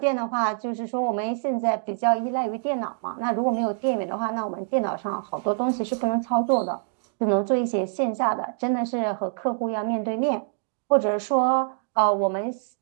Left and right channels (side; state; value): left; silent; digital silence